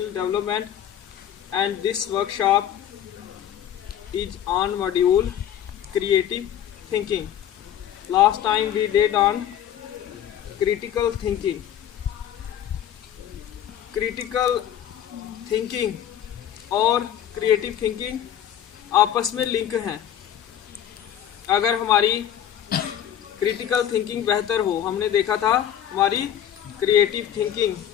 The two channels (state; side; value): quieter; right; 10.3 dB